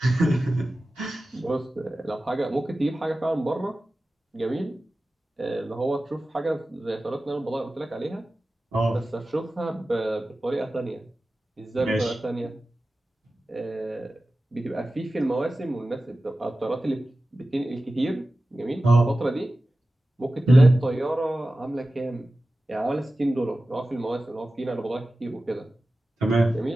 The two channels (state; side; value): normal; both; correlation 0.95